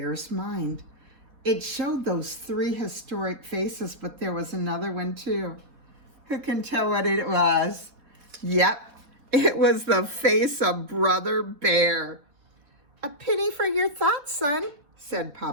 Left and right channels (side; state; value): left; late; 4.1 ms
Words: mind. It showed those 3 historic faces, but there was another one too. Who can tell what it was? Yep, it was the face of Brother Bear. A penny for your thoughts, son, said